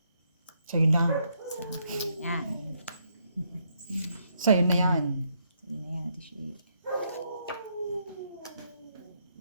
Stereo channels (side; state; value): both; inverted; correlation -0.75